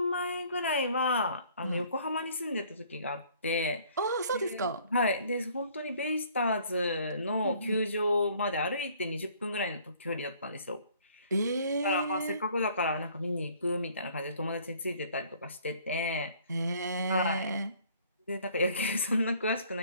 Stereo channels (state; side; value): inverted; both; correlation -0.58